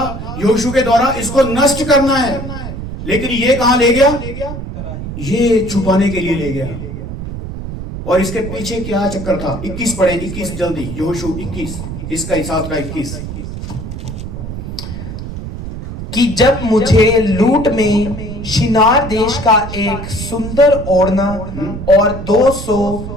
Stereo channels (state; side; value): noise; right; rumble, 8 dB below the sound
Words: यहोशू के द्वारा, इसको नष्ट करना है, लेकिन ये कहां ले गया? ये छुपाने के लिए ले गया। और इसके पीछे क्या चक्कर था? 21 पढ़े, 21 जल्दी, यहोशू 21, इसका हिसाब का 21। कि जब मुझे लूट में शिनार देश का एक सुंदर ओढ़ना और 200